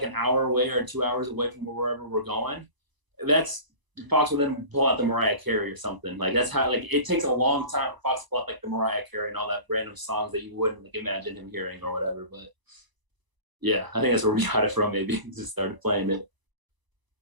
an hour away or 2 hours away from wherever we're going, Fox will then pull out the Mariah Carey or something. Like that's how it takes a long time for Fox to pull out like the Mariah Carey and all that random songs that you wouldn't imagine him hearing or whatever. But yeah, I think that's where we got it from. Maybe just started playing it.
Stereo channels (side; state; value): left; late; 1.0 ms